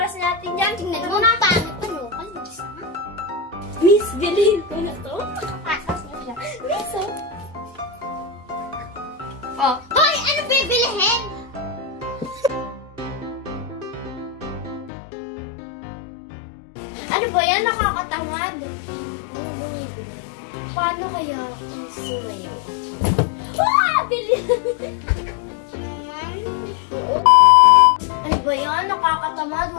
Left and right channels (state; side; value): drops out; right; at 14.9 s